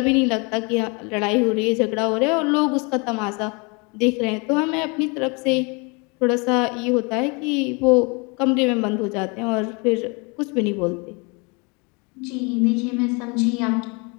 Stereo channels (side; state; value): right; quieter; 30.7 dB